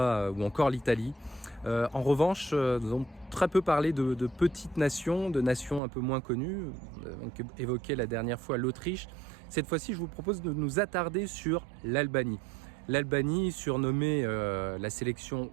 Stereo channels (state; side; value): drops out; left; at 5.8 s